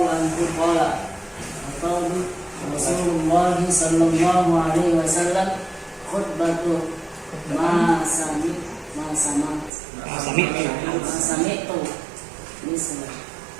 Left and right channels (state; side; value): drops out; left; at 9.7 s